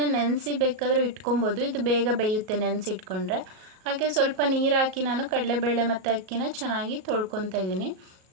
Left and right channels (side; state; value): left; late; 38 ms